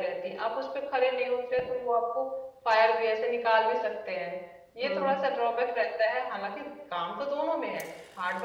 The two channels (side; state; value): both; identical; correlation 1.00